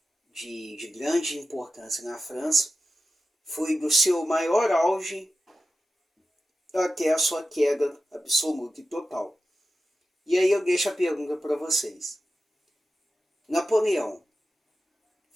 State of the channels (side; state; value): both; normal; correlation 0.92